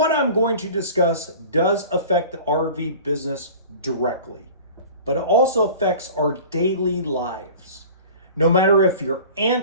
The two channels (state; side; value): inverted; both; correlation -0.41